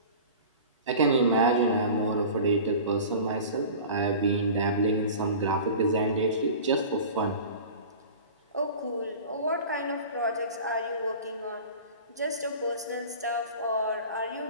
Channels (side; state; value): both; inverted; correlation -0.38